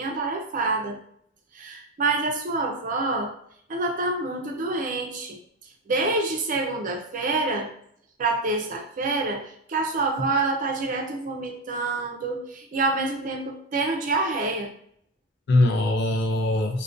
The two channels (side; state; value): both; normal; correlation 0.20